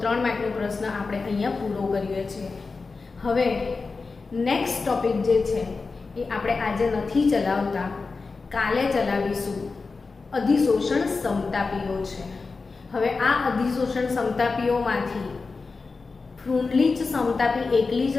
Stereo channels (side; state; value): right; quieter; 4.2 dB